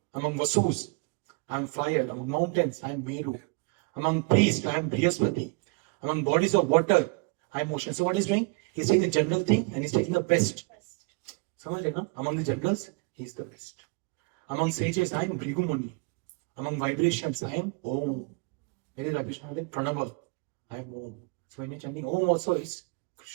Among Vasus, I am fire. Among mountains, I am Meru. Among priests, I am Brihaspati. Among bodies of water, I am ocean. So what he's doing? He's taking the general thing and he's taking the best. Among the generals, he's the best. Among sages, I am Bhrigu Muni. Among vibrations, I am Om. Where is vibration? Pranava. I am Om. So when you're chanting Om also is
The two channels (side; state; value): left; quieter; 29.2 dB